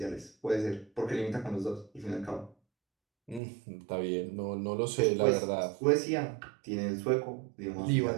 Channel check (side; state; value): left; drops out; at 3.4 s